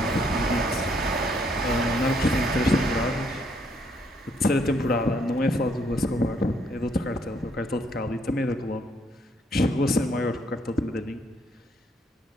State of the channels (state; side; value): normal; both; correlation 0.70